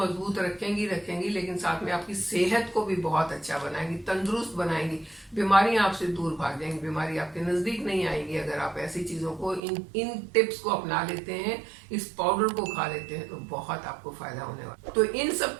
रखेंगी, लेकिन साथ में आपकी सेहत को भी बहुत अच्छा बनाएंगी, तंदुरुस्त बनाएंगी। बीमारियां आपसे दूर भाग जाएंगी, बीमारी आपके नजदीक नहीं आएगी। अगर आप ऐसी चीजों को इन टिप्स को अपना लेते हैं, इस पाउडर को खा लेते हैं, तो बहुत आपको फायदा होने वाला। तो इन सब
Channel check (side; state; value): left; drops out; at 9.6 s